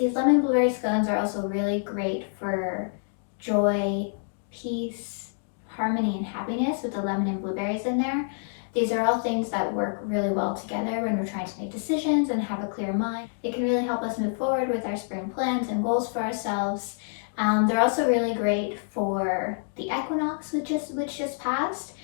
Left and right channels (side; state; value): right; silent; digital silence